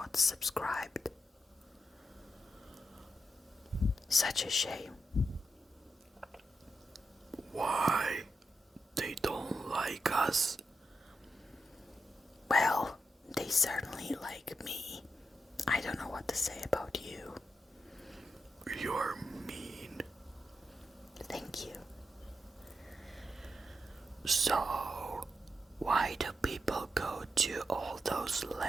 subscribed. Such a shame. Why? They don't like us? Well, they certainly like me. I don't know what to say about you. You're mean. Thank you. So, why do people go to all those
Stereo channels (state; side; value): normal; both; correlation 0.86